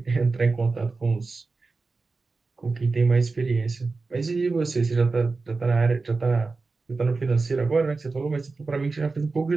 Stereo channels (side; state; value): left; quieter; 3.9 dB